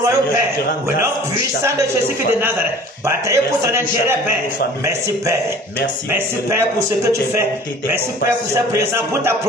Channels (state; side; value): normal; both; correlation 0.46